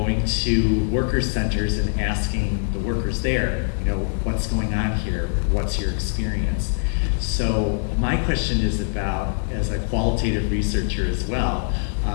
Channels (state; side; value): silent; right; 64 dB below the other